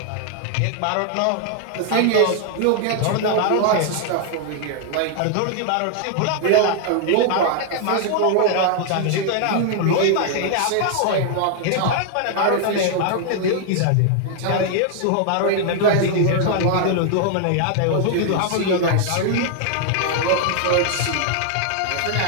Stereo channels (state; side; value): different; both; correlation 0.00